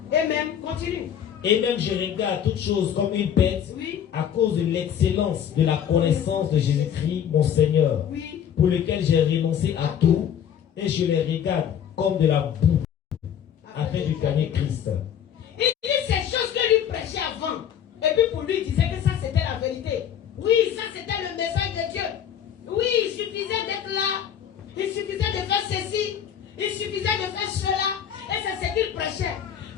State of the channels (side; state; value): right; quieter; 9.0 dB